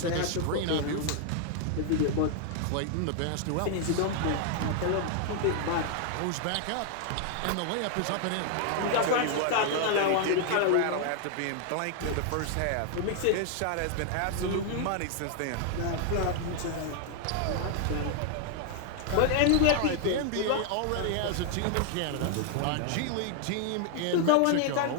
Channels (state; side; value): different; both; correlation 0.00